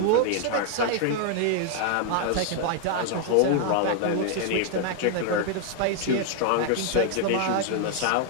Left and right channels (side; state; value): both; different; correlation 0.00